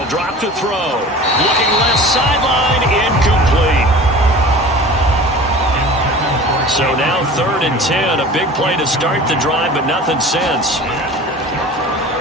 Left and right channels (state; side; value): normal; both; correlation 0.39